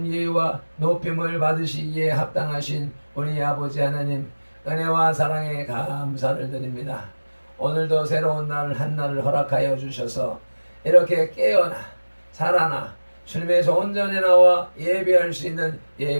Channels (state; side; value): inverted; both; correlation -1.00